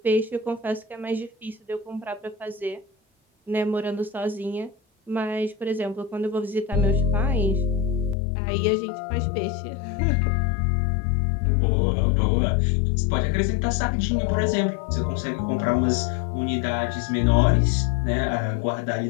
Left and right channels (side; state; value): right; drops out; at 8.2 s